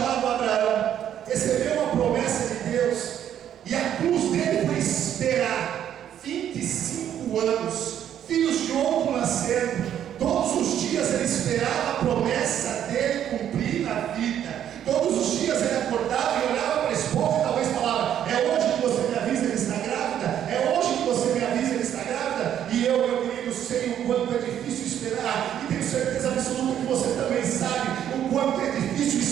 Abraão, recebeu uma promessa de Deus, e a cruz dele foi esperar 25 anos, filhos de outro nascendo. Todos os dias ele esperava a promessa dele cumprir na vida. Todos os dias ele acordava e olhava para a esposa e talvez falava: é hoje que você me avisa que ele está grávida? É hoje que você me avisa que ele está grávida? E eu, meu querido, sei o quanto é difícil esperar, e tenho certeza absoluta que você também sabe o quanto é difícil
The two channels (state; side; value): quieter; left; 10.1 dB